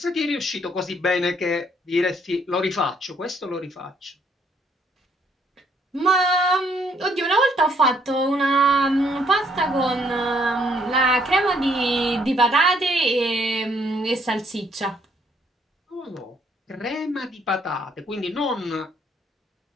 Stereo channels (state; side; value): normal; both; correlation 0.68